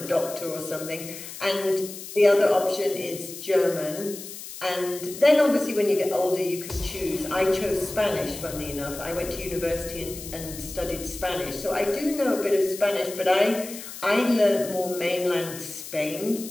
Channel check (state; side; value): noise; left; hiss, 12 dB below the sound